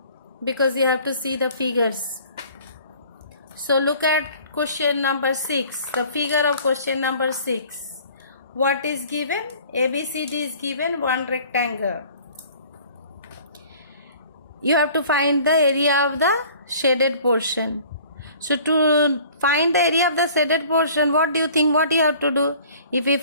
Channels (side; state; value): both; inverted; correlation -0.50